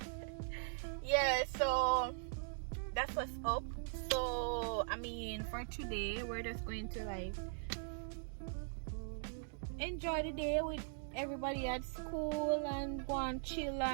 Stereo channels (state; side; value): silent; left; digital silence